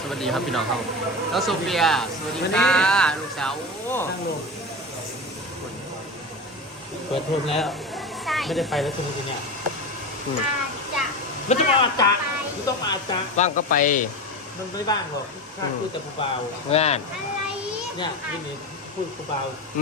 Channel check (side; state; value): both; normal; correlation 0.25